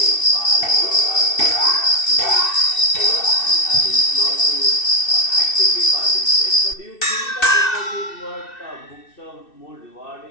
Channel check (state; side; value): late; right; 2.6 ms